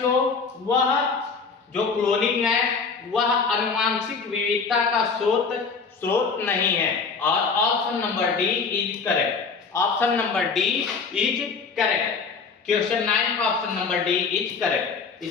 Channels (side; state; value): right; quieter; 5.1 dB